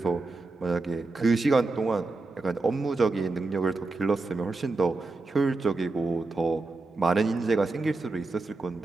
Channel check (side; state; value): left; quieter; 3.5 dB